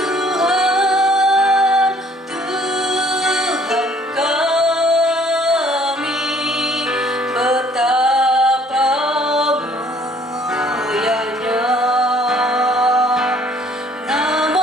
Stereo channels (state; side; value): normal; both; correlation 0.59